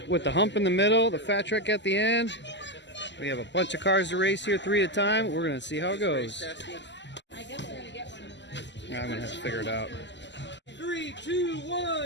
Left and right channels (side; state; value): right; late; 0.52 ms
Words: the hump in the middle, the fat track at the end. We have a bunch of cars to race here, 3 at a time. We're gonna see how it goes. Yeah, I'm gonna have to figure it out. 3, 2,